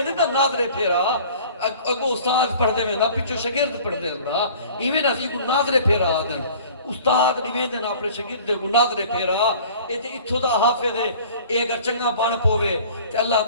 دے دا نادرے پھیرا اگو استاد پڑھ دے میں دا پچھو شگرد پڑھ دے دا ایویں نسی کو نادرے پھیرا دن استاد نویندن اپنے شگرد کو ناظرے پھیرا ایتے اتھو دا حافظ ہے اے اگر چنگا بان پوے تے اللہ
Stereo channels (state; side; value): inverted; both; correlation -0.47